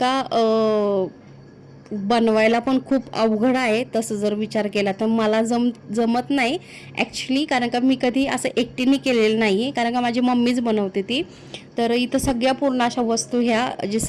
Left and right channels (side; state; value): both; identical; correlation 1.00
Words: बनवायला पण खूप अवघड आहे तसं जर विचार केला तर. मला जमत नाही ॲक्च्युली, कारण का मी कधी असं एकटीने केलेलं नाही, कारण का माझी मम्मीच बनवते ती. तर इथं सगळ्या पूर्ण अशा वस्तू ह्या जे